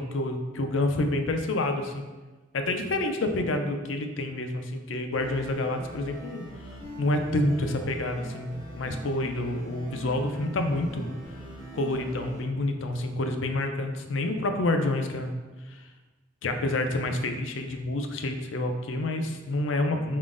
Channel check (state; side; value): normal; both; correlation 0.49